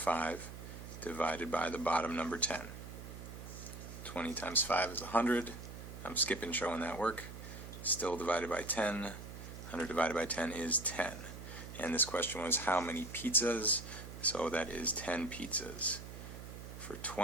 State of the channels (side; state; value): right; noise; hum, 11 dB below the sound